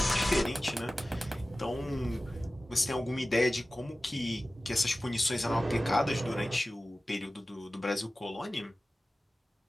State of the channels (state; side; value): normal; both; correlation 0.96